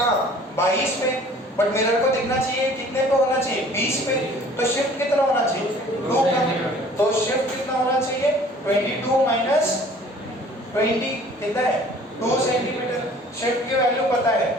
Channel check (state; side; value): normal; both; correlation 0.51